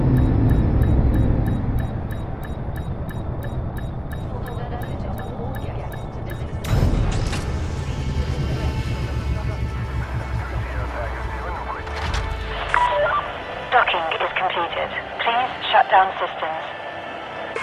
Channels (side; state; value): both; identical; correlation 1.00